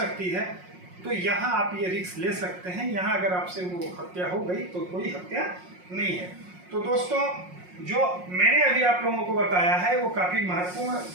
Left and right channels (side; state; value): left; late; 5.5 ms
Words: है, तो यहाँ आप ये रिस्क ले सकते हैं। यहाँ अगर आपसे वो हत्या हो गई तो कोई हत्या नहीं है। तो दोस्तों, जो मैंने अभी आप लोगों को बताया है वो काफ़ी महत्वपूर्ण